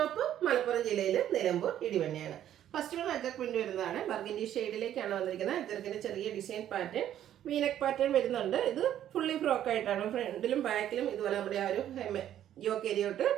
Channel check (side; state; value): left; quieter; 11.2 dB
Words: മലപ്പുറം ജില്ലയിൽ നിലമ്പൂർ ഇടിവണ്ണയാണ്. ഫസ്റ്റ് വൺ അജർക്ക് പ്രിന്റ് വരുന്നതാണ്. ബർഗൻഡി ഷെയ്ഡിലേക്കാണ് വന്നിരിക്കുന്നത്. അജർക്കിന്റെ ചെറിയ ഡിസൈൻ പാറ്റേൺ, വീനക്ക് പാറ്റേൺ വരുന്നുണ്ട്. ഇത് ഫുള്ളി ഫ്രോക്ക് ആയിട്ടാണ്. ഫ്രണ്ടിലും ബാക്കിലും ഇതുപോലെ നമ്മുടെ ആ ഒരു യോക്ക് ഏരിയോട്ട്